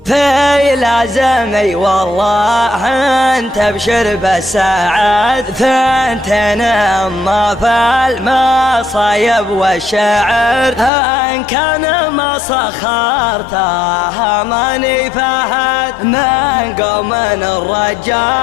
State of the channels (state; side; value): drops out; right; at 10.9 s